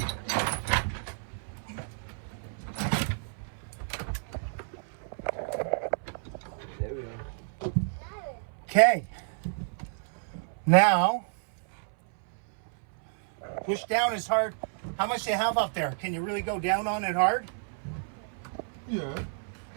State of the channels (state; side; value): silent; left; 58 dB below the other